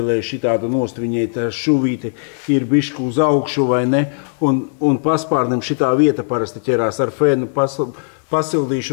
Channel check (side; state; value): right; silent; digital silence